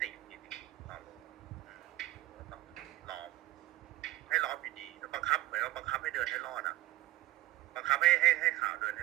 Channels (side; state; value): left; quieter; 16.5 dB